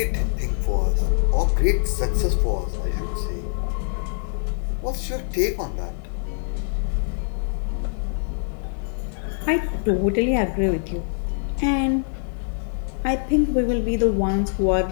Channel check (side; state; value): right; silent; digital silence